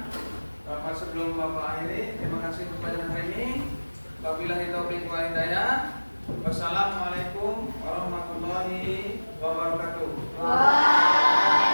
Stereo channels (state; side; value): inverted; both; correlation -1.00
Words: Sebelum Bapak akhiri, terima kasih untuk pelajaran hari ini. Wabillahi taufiq wal hidayah. Wassalamualaikum warahmatullahi wabarakatuh.